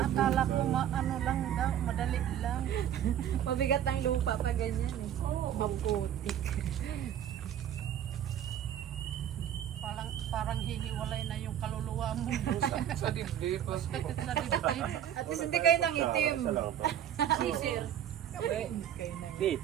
akala ko ano lang daw, madali lang. Mabigat ang lupa pa ganyan eh. Maputik. Parang hihiwalay na yung kaluluwa mo. Sa dibdib. Sa dibdib. At least hindi kayo nang itim. Isa lang to. Sir. Di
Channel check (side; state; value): left; quieter; 10.3 dB